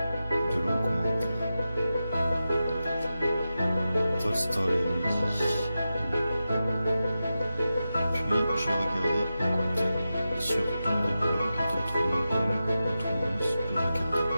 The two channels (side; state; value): both; inverted; correlation -0.91